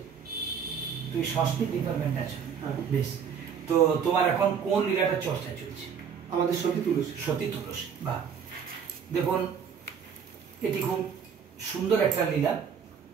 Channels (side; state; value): left; quieter; 7.2 dB